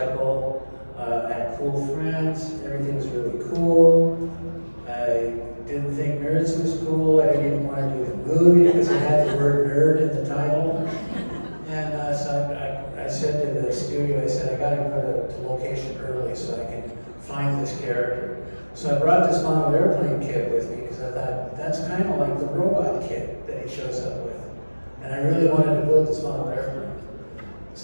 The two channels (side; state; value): both; inverted; correlation -1.00